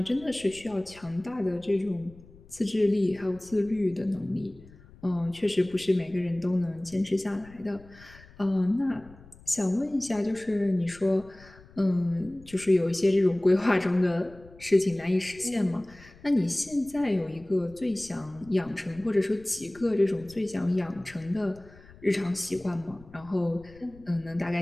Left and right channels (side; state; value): left; noise; rumble, 23 dB below the sound